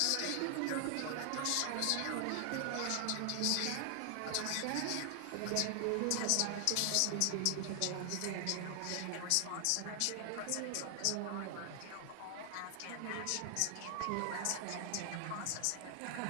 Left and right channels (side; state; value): both; different; correlation 0.00